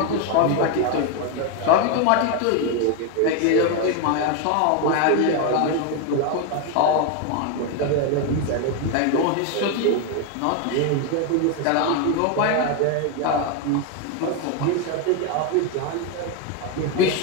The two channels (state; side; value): different; both; correlation 0.02